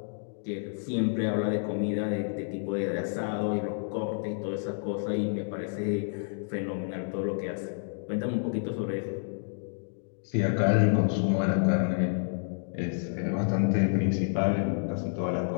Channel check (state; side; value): silent; right; digital silence